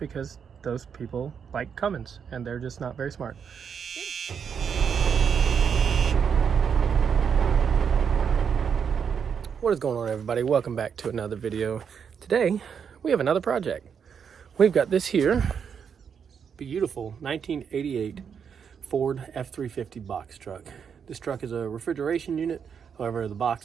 those people like Cummins and they're just not very smart. What is going on, everybody? Welcome back to another video. Today we have another project. We've got this here beautiful 1988 Ford F350 box truck. This truck is a refrigeration unit. However, the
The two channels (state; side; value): quieter; left; 7.1 dB